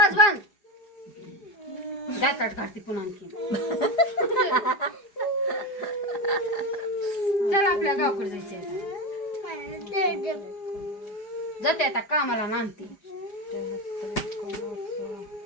बंद. दातात काढते पुन्हा आणखी. चल आपल्या गावकडे जायचंय. जाते आता कामाला नांदते.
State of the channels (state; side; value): late; right; 4.9 ms